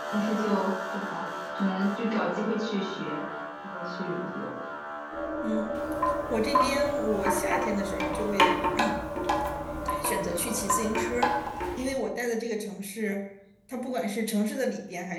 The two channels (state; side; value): identical; both; correlation 1.00